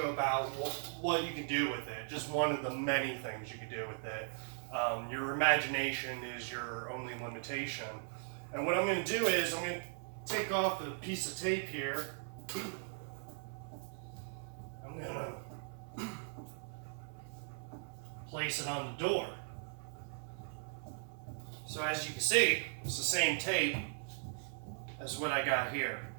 about what you can do with it, just one of the many things you can do with it. Your imagination is your only limitation. And what I'm going to do is I'm going to take off a piece of tape here. I'm going to place it on the door. So as you can see, it's the same tape as what I got here.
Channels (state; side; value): silent; left; 52 dB below the other